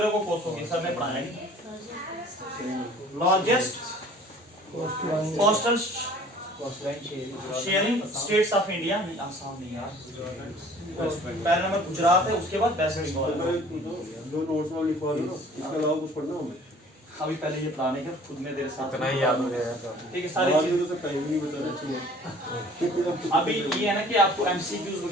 को कोसोगे, सर ने पढ़ाया नहीं। Largest coastal sharing states of India, Assam नहीं यार, पहला नंबर गुजरात है, उसके बाद वेस्ट बंगाल। जो नोट्स में लिखवा दो ना, इसके अलावा कुछ पढ़ना हमें। अभी पहले ये प्लान है कि खुद में तेरे साथ इतना ही याद हो जाएगा, ठीक है। सारी बाद चीज में तो टाइम नहीं बचा रहा चाहिए। अभी ये है ना कि आपको MCQs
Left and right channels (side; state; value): both; normal; correlation 0.50